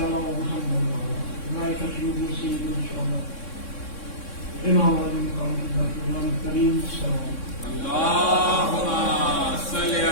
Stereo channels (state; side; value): late; right; 3.6 ms